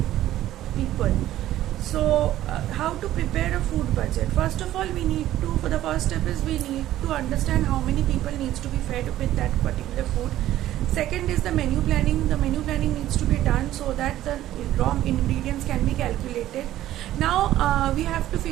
people. So how to prepare a food budget? First of all, for the first step is we need to understand how many people needs to be fed with that particular food. Second is the menu planning. The menu planning needs to be done so that the raw ingredients can be calculated. Now we have to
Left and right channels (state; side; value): quieter; left; 13.7 dB